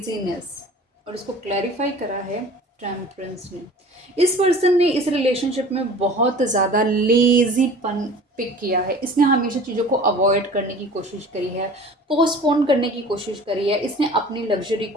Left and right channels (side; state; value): both; normal; correlation 0.43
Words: और इसको क्लैरिफाई करा है टेम्परेंस ने। इस पर्सन ने इस रिलेशनशिप में बहुत ज़्यादा लेजीपन पिक किया है। इसने हमेशा चीज़ों को अवॉइड करने की कोशिश करी है, पोस्टपोन करने की कोशिश करी है, इसने अपनी लग्जरी